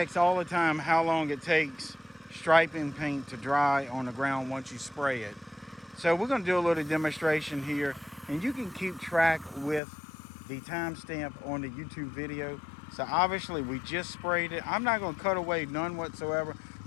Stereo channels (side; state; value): right; drops out; at 9.8 s